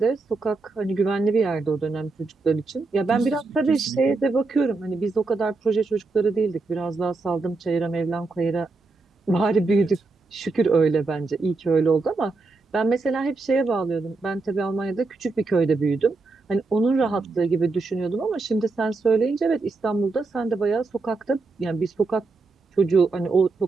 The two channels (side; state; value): left; quieter; 3.7 dB